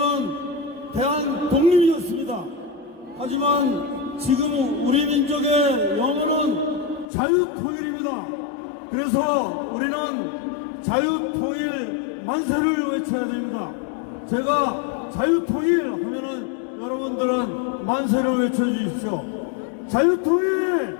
대한 독립이었습니다. 하지만 지금 우리 민족의 영원은 자유통일입니다. 그래서 우리는 자유통일 만세를 외쳐야 됩니다. 제가 자유통일 하면은 여러분들은 만세를 외쳐주십시오.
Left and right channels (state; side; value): drops out; right; at 7.1 s